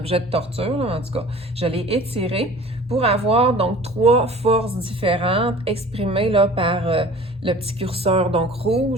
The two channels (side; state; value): both; normal; correlation 0.44